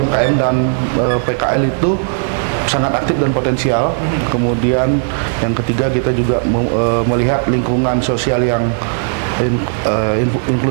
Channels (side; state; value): left; silent; digital silence